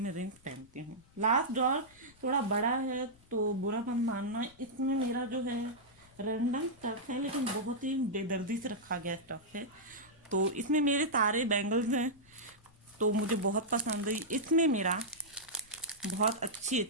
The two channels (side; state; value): left; noise; rumble, 28 dB below the sound